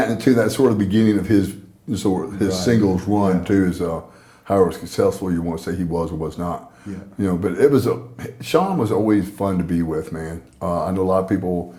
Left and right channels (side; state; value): both; identical; correlation 1.00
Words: and too, that's sort of the beginning of his Right. singles run, Yeah. too, is however successful you want to say he was or was not. Yeah. You know, but it was Shawn was always fun to be with, man. I know a lot of people